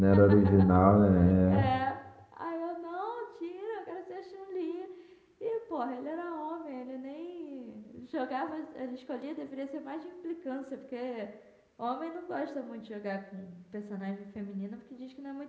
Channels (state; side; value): identical; both; correlation 1.00